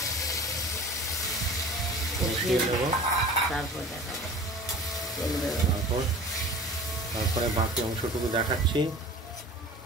কষিয়ে নেব। তারপরে বাকি অংশটুকু দেখাচ্ছি।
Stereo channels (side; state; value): both; normal; correlation 0.41